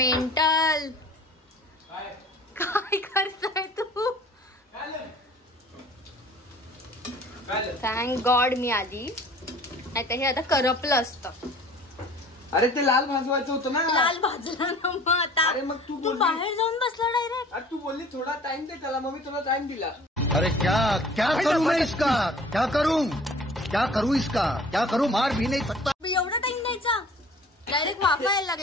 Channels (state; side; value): normal; both; correlation 0.48